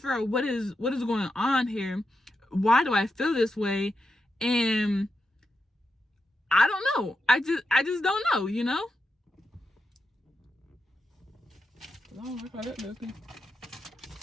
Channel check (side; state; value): both; normal; correlation 0.87